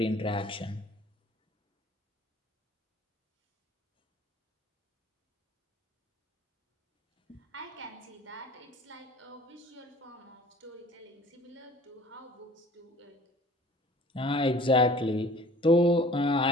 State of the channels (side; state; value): both; normal; correlation 0.48